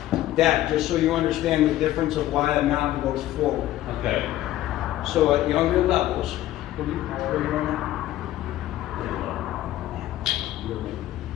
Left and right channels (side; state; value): right; quieter; 14.4 dB